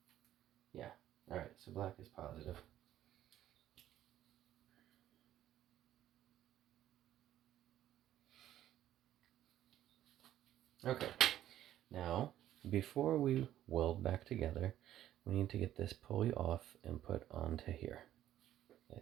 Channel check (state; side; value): quieter; left; 12.4 dB